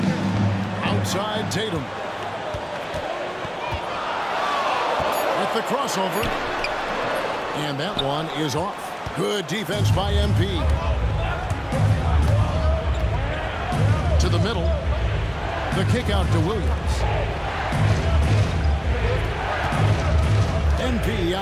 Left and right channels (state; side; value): identical; both; correlation 1.00